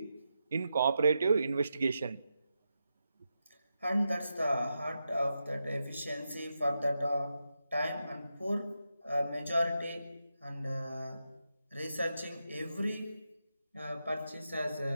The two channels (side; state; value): both; inverted; correlation -0.87